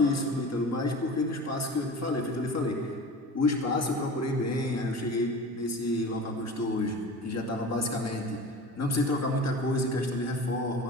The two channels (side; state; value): both; normal; correlation 0.36